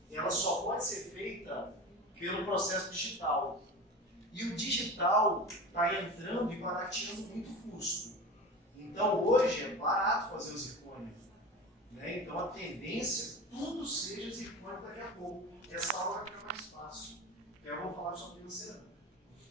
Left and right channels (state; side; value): normal; both; correlation 0.31